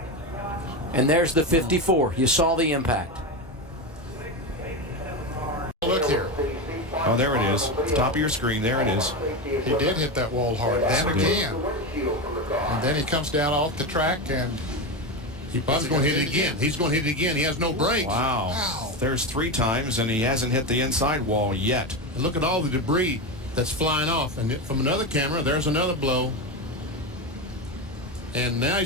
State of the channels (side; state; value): both; normal; correlation 0.17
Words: And there's the 54. You saw the impact. Look here. Oh, there it is. Top of your screen. There it is. He did hit that wall hard. And again. And then he comes down off the track and Bob's going to hit it again. He's going to hit it again. He has no brakes. Wow. There's 3 times, and he hasn't hit the inside wall yet. And look at all the debris that's flying off. And from another camera, there's another blow. And now